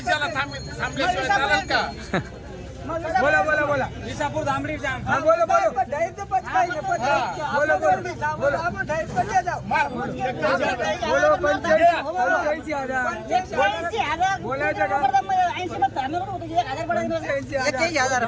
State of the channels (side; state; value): both; identical; correlation 1.00